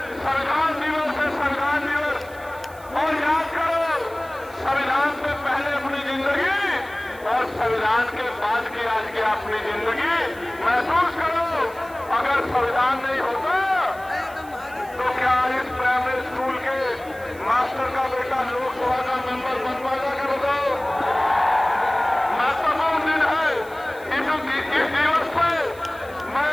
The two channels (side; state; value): right; noise; hiss, 23 dB below the sound